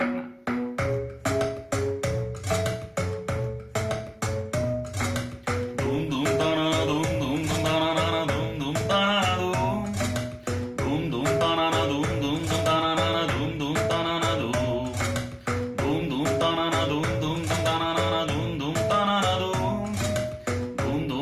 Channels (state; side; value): identical; both; correlation 1.00